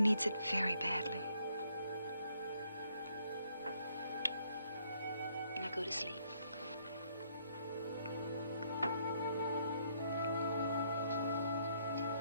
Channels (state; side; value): inverted; both; correlation -0.70